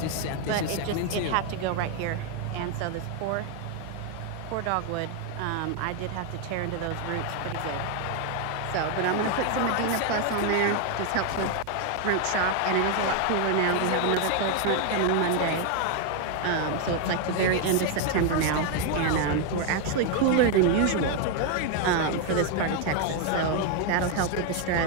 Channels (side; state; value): both; different; correlation 0.01